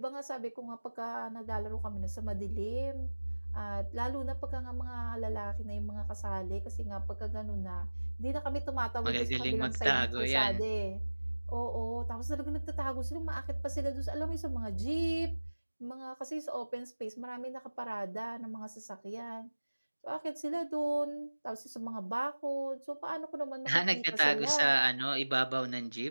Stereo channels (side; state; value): both; inverted; correlation -1.00